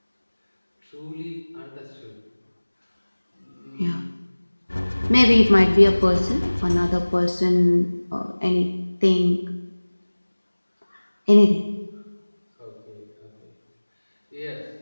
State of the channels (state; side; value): inverted; both; correlation -1.00